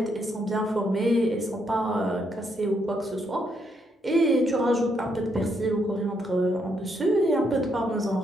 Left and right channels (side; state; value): both; normal; correlation 0.76